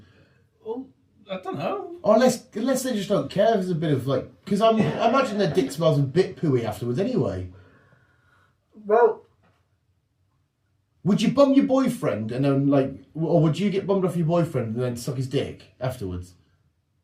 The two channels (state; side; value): identical; both; correlation 1.00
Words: Well, I don't know. Or unless they just don't care. There's a bit of like... Because I imagine their dick smells a bit pooey afterwards anyway. Well... Would you bum your boyfriend and then like... Or would you get bummed off your boyfriend and then suck his dick afterwards?